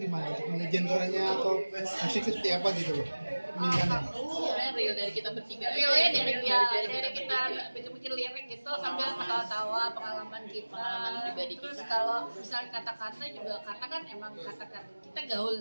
untuk memilih genre-nya atau musiknya seperti apa gitu loh pemilihannya? Real dari kita bertiga. Realnya dari kita bikin lirik gitu sambil ketawa-tawa pengalaman pribadi Terus kita. kalau misalnya kata-kata juga, karena kan emang kata-kata kita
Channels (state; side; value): inverted; both; correlation -1.00